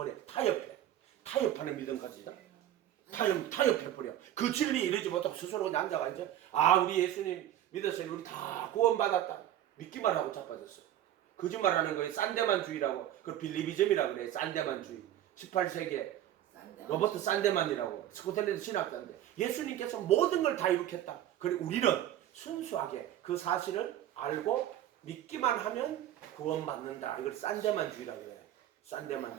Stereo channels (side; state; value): left; quieter; 12.1 dB